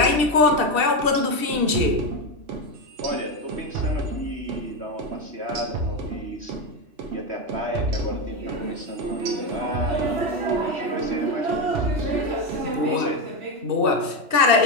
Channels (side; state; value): left; late; 2.7 ms